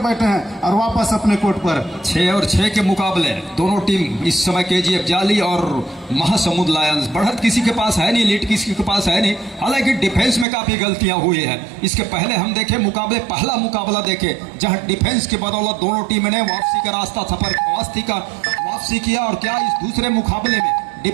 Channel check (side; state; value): left; drops out; at 10.5 s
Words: हैं और वापस अपने कोर्ट पर। 6 और 6 के मुकाबले दोनों टीम इस समय KGF जाली और महासमुंद लायंस। बढ़त किसी के पास है नहीं, लीड किसी के पास है नहीं, हालांकि डिफेंस में काफी गलतियां हुई है। इसके पहले हम देखे मुकाबले, पहला मुकाबला देखे जहां डिफेंस की बदौलत दोनों टीम ने वापसी का रास्ता सफर वापसी किया और क्या इस दूसरे मुकाबले में